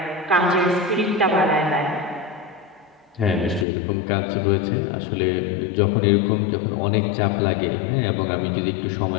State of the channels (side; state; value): right; drops out; at 3.7 s